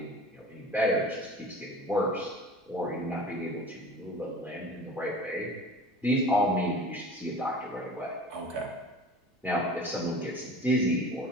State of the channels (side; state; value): both; normal; correlation 0.40